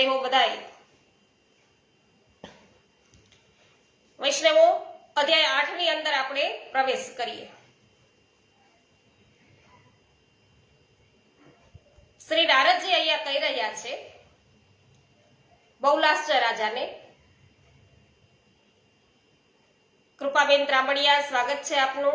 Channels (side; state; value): both; identical; correlation 1.00